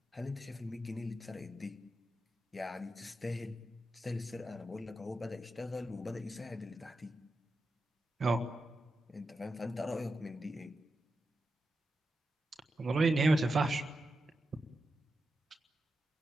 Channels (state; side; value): normal; both; correlation 0.89